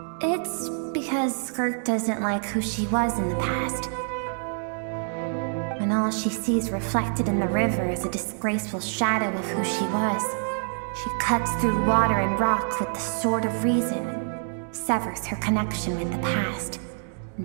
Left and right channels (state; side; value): silent; left; 61 dB below the other